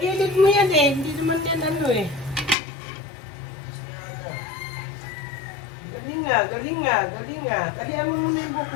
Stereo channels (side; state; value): right; drops out; at 2.6 s